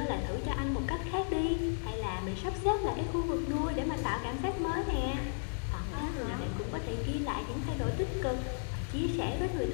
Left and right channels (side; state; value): right; silent; digital silence